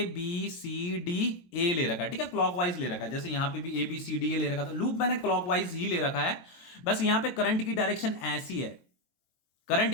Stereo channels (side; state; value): right; late; 22 ms